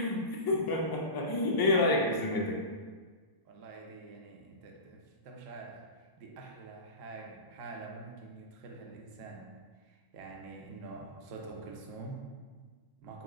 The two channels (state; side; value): late; right; 1.0 ms